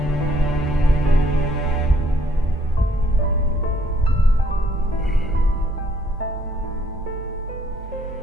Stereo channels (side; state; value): both; normal; correlation 0.67